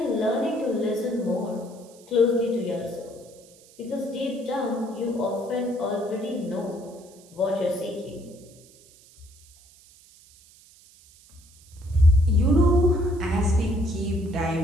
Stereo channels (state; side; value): noise; right; hiss, 26 dB below the sound